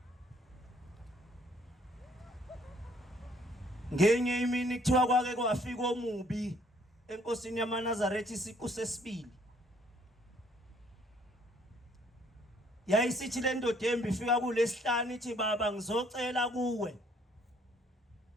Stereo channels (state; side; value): normal; both; correlation 0.63